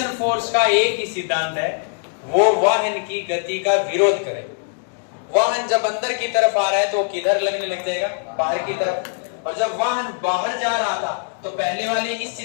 फोर्स का एक ही सिद्धांत है, वो वाहन की गति का विरोध करे। वाहन जब अंदर की तरफ आ रहा है तो किधर लगने लग जाएगा, बाहर की तरफ, और जब वाहन बाहर जा रहा था तो पहले वाले इस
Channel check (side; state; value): right; silent; digital silence